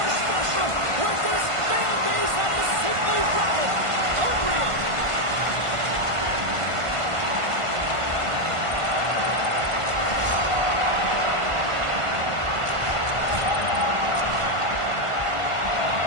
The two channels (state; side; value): late; left; 1.5 ms